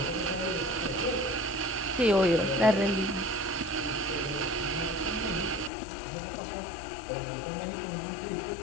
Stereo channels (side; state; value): right; drops out; at 5.7 s